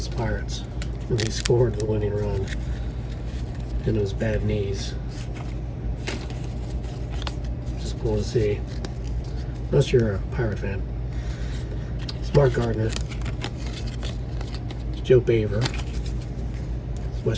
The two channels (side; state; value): both; identical; correlation 1.00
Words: the Pirates when he scored the winning run and it was bad knees. Just cool to see. Unless you're a Pirate fan. It's Mark Gardner. It's Joe Baver. It's